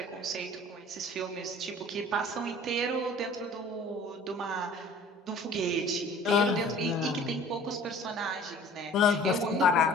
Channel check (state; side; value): normal; both; correlation 0.48